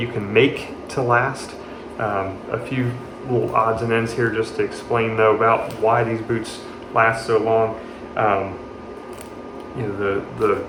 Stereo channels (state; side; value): identical; both; correlation 1.00